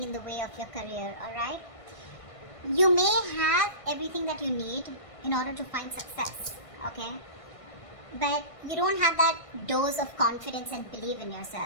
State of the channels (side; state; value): right; late; 1.5 ms